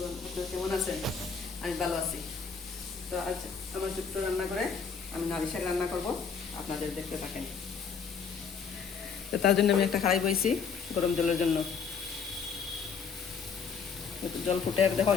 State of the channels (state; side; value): quieter; right; 5.9 dB